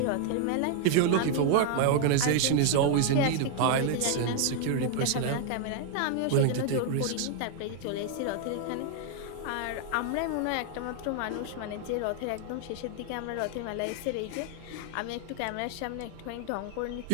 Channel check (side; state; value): both; different; correlation 0.00